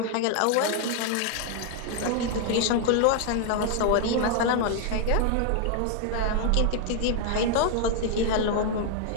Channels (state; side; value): different; both; correlation 0.00